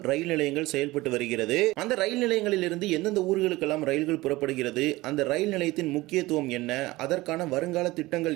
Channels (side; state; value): left; quieter; 19.6 dB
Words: ரயில் நிலையங்கள் செயல்பட்டு வருகிறது. அந்த ரயில் நிலையங்களில் இருந்து எந்தெந்த ஊர்களுக்கெல்லாம் ரயில்கள் புறப்படுகிறது, அந்த ரயில் நிலையத்தின் முக்கியத்துவம் என்ன, அதற்கான வருங்கால திட்டங்கள்